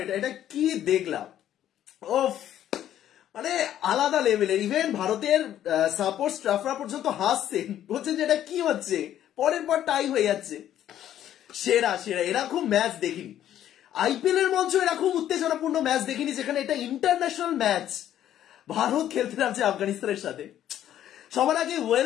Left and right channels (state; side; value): quieter; right; 11.4 dB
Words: এটা, এটা কি দেখলাম। ওফ, মানে আলাদা লেভেলের। ইভেন ভারতের সাপোর্ট স্টাফরা পর্যন্ত হাসছেন, বলছেন যে এটা কি হচ্ছে, পরের পর টাই হয়ে যাচ্ছে। সেরা সেরা, এরকম ম্যাচ দেখিনি। আইপিএল এর মঞ্চ এরকম উত্তেজনাপূর্ণ ম্যাচ দেখিনি, যেখানে এটা ইন্টারন্যাশনাল ম্যাচ। ভারত খেলতে নামছে আফগানিস্তানের সাথে। সবার আগে